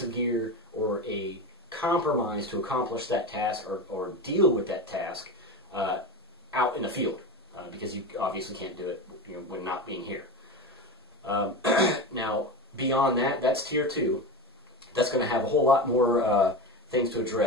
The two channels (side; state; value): both; normal; correlation 0.23